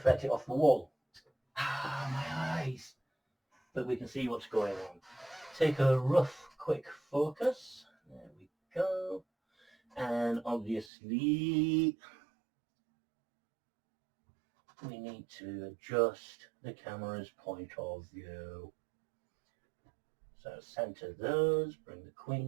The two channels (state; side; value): drops out; left; at 10.9 s